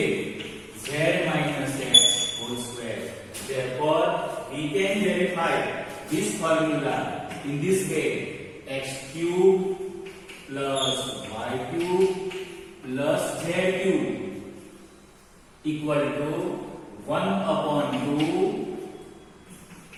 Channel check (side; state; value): both; identical; correlation 1.00